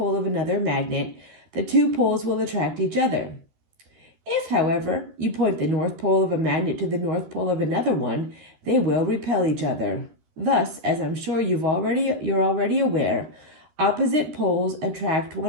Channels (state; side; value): late; left; 13 ms